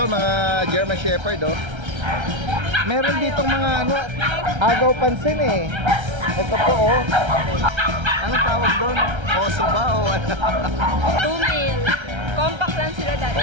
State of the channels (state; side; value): late; left; 1.3 ms